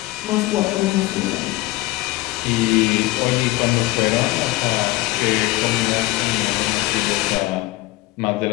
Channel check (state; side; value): quieter; right; 19.1 dB